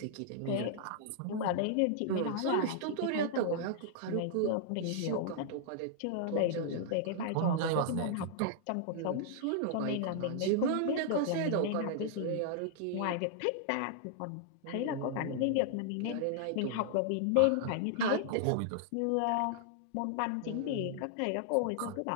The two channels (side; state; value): both; different; correlation -0.01